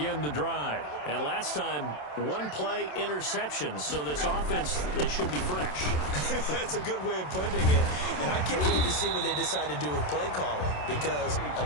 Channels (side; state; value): right; late; 27 ms